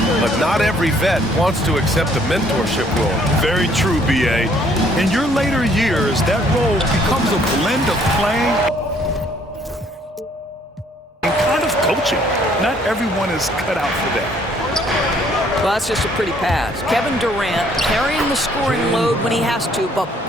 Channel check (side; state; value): both; normal; correlation 0.63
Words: but not every vet wants to accept a mentorship role. Very true, B.A. In your later years, that role becomes a blend of playing and kind of coaching. Not everyone is cut out for that. Well, that's just a pretty pass. Kevin Durant carrying the scoring load when he has to, but